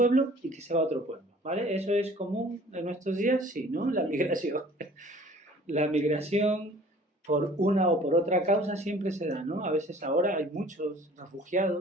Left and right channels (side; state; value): both; normal; correlation 0.50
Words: y que se va a otro pueblo, ¿vale? ¿Eso es común en nuestros días? Sí, ¿no? La migración. La migración por una o por otra causa siempre se da, ¿no? A veces ahora hay muchos